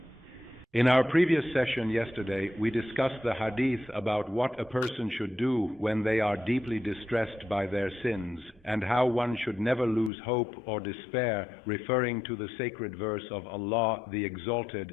In our previous session yesterday, we discussed the hadith about what a person should do when they are deeply distressed by their sins, and how one should never lose hope or despair, referring to the sacred verse of Allah the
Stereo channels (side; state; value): right; drops out; at 10.1 s